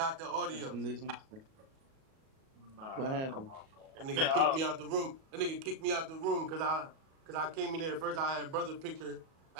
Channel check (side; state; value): left; late; 37 ms